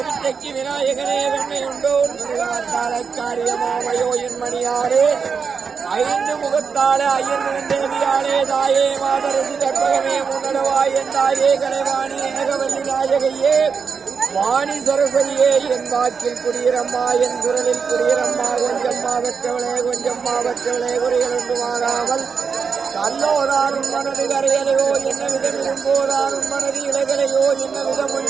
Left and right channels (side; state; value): left; quieter; 5.8 dB